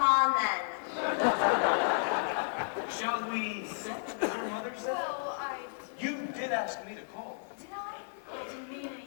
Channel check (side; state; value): right; silent; 56 dB below the other